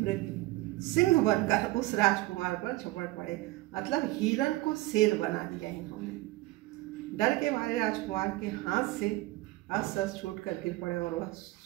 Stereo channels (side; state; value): left; quieter; 18.8 dB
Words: सिंह बनकर उस राजकुमार पर झपट पड़े। मतलब हिरण को शेर बना दिया इन्होंने। डर के मारे राजकुमार के हाथ से अस्त्र छूटकर गिर पड़े और वह